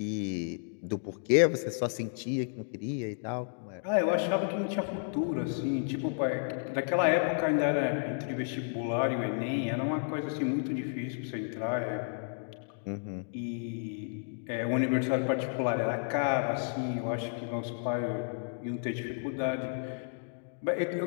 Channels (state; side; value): silent; right; digital silence